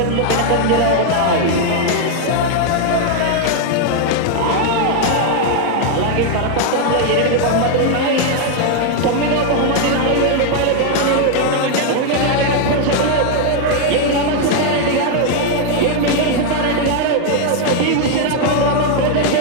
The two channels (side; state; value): both; different; correlation 0.00